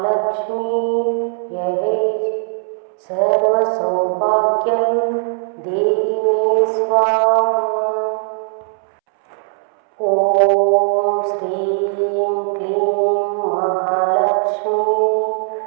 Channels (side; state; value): left; silent; 67 dB below the other